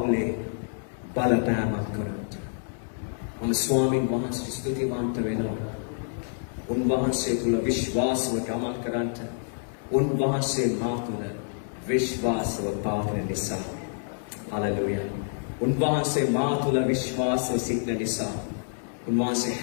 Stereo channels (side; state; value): right; silent; digital silence